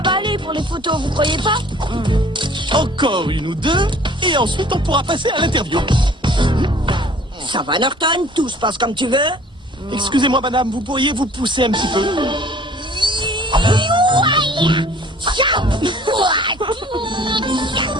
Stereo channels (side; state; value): both; normal; correlation 0.52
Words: va aller pour les photos, vous croyez pas? Encore une ou deux, et ensuite on pourra passer à l'interview. Ça va, Norton? Tout se passe comme tu veux? Excusez-moi, madame, vous pourriez vous pousser un petit peu?